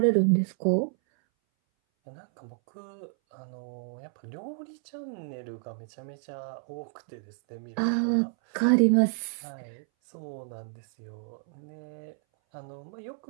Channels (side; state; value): left; silent; 58 dB below the other